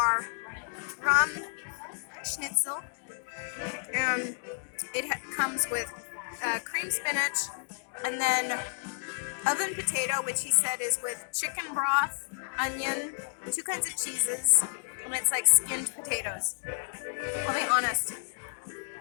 rum schnitzel, and it comes with cream spinach and then oven potato, which he said is with chicken broth, onion, 2 kinds of cheeses, and it's like skinned potatoes. I'll be honest,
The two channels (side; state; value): right; silent; digital silence